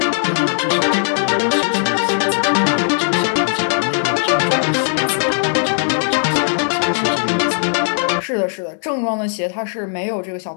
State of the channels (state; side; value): silent; right; digital silence